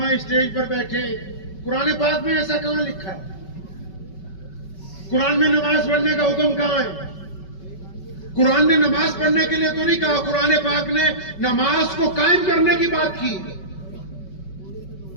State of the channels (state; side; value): late; right; 5.3 ms